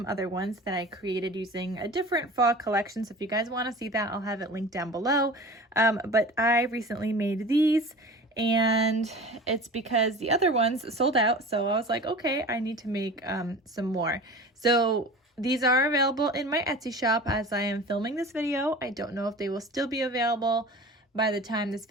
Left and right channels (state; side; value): normal; both; correlation 0.38